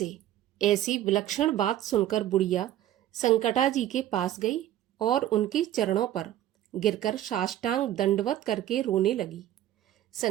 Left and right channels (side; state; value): left; quieter; 12.7 dB